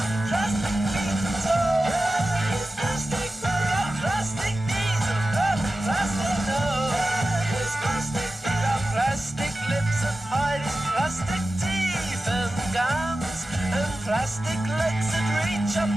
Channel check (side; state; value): both; normal; correlation 0.94